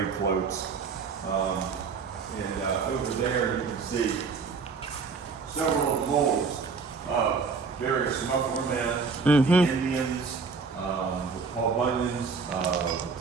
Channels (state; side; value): quieter; left; 5.0 dB